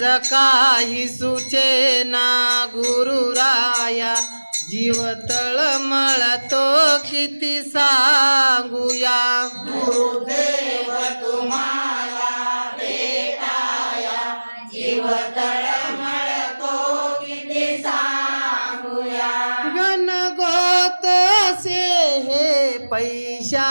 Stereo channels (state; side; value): inverted; both; correlation -1.00